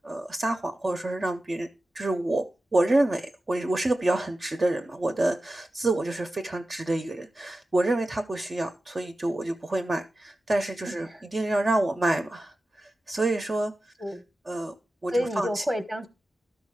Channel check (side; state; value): both; normal; correlation 0.94